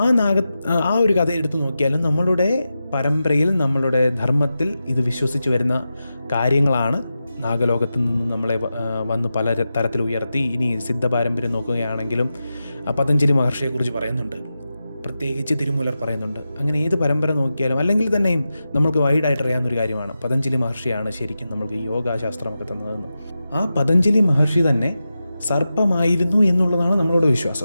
ഒരു കഥ എടുത്തു നോക്കിയാലും നമ്മളുടെ പരമ്പരയിൽ നമ്മളുടെ ധർമ്മത്തിൽ ഇത് വിശ്വസിച്ച് വരുന്ന കാര്യങ്ങളാണ്. നാഗലോകത്ത് നിന്ന് നമ്മളെ വന്ന് പല തരത്തിൽ ഉയർത്തി. ഇനി സിദ്ധ പാരമ്പര്യം നോക്കുകയാണെങ്കിലും പതഞ്ജലി മഹർഷിയെക്കുറിച്ച് പറയുന്നുണ്ട്, പ്രത്യേകിച്ച് തിരുമൂലർ പറയുന്നുണ്ട്. അങ്ങനെ ഏത് പരമ്പര നോക്കിയാലും അല്ലെങ്കിൽ തന്നെയും നമ്മൾക്ക് വൈഡായിട്ട് അറിയാവുന്നൊരു കാര്യമാണ് പതഞ്ജലി മഹർഷിയാണ് ശരിക്കും നമ്മൾക്ക് യോഗാശാസ്ത്രമൊക്കെ തന്നതെന്ന്. ആ പതഞ്ജലി മഹർഷി തന്നെ സർപ്പമായിരുന്നു എന്നുള്ളതാണ് നമ്മളുടെ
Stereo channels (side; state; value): both; inverted; correlation -0.91